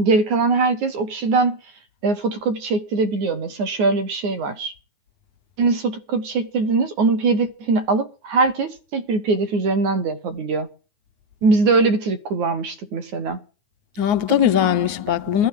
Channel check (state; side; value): late; left; 9.5 ms